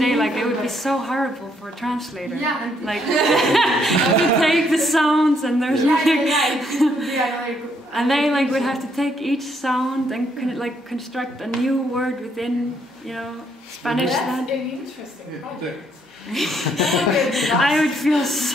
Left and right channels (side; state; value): both; normal; correlation 0.71